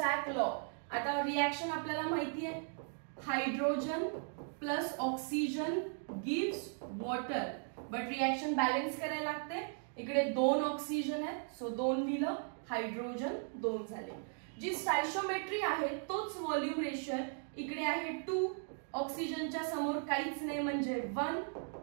law. आता रिएक्शन आपल्याला माहिती आहे, hydrogen plus oxygen gives water, but reaction balance करायला लागते. इकडे 2 ऑक्सिजन आहे, सो 2 दिलं, हायड्रोजन 2 झाले. जी स्टायशोमेट्री आहे तोच व्हॉल्यूम रेशिओ आहे. इकडे आहे 2, ऑक्सिजनच्या समोर काहीच नाही म्हणजे 1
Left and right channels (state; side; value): silent; left; 53 dB below the other